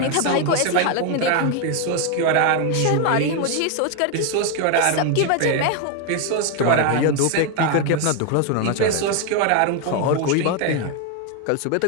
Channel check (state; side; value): different; both; correlation 0.01